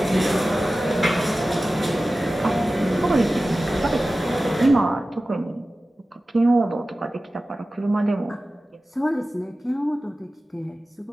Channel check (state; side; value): normal; both; correlation 0.95